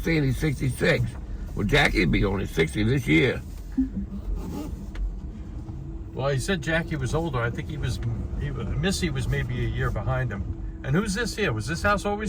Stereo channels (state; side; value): identical; both; correlation 1.00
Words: he's 66. Well, Jackie'd be only 60 this year. Well, he said Jackie was older. I think Missy was maybe a year behind him. And who's this here? Was this house